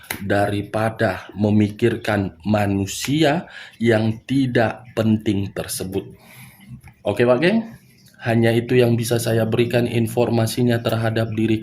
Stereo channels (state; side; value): identical; both; correlation 1.00